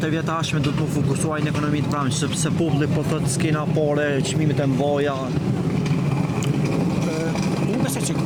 vjetë ashme do të fokusuaj në ekonominë të pranë, sepse populli po thotë s'kena pare, çmimet e mëdha. Unë besoj që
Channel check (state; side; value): identical; both; correlation 1.00